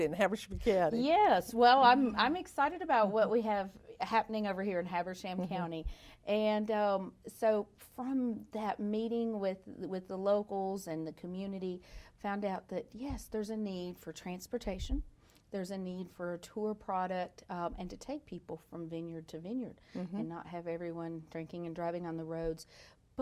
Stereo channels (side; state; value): both; identical; correlation 1.00